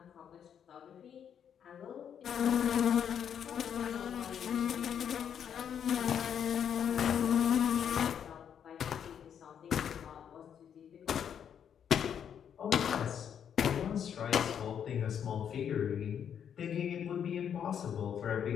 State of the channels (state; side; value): quieter; right; 8.5 dB